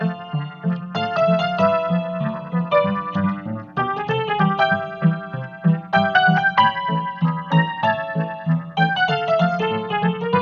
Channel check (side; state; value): both; identical; correlation 1.00